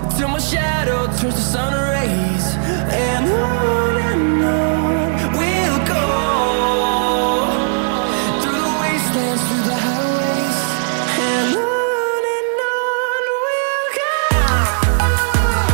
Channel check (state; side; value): silent; left; 64 dB below the other